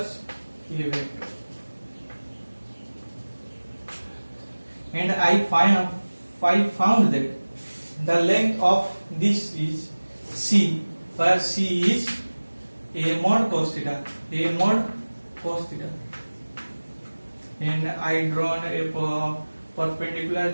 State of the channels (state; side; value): inverted; both; correlation -1.00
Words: A vector. And I found that the length of this is C, where C is A mod cos theta, A mod cos theta. And I drawn a perpendicular